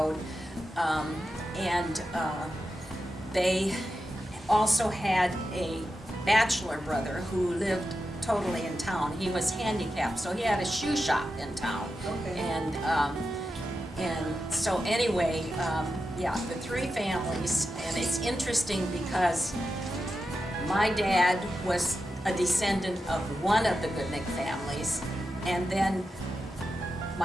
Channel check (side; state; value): both; normal; correlation 0.90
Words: and they also had a bachelor brother who lived totally in town. He was handicapped, so he had a shoe shop in town. Okay. And so anyway, yeah, the 3 families, and it's interesting because my dad was a descendant of one of the Goodnick families, and then